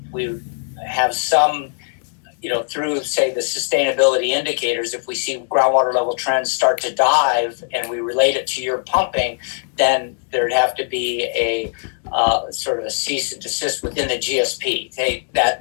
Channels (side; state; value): right; silent; digital silence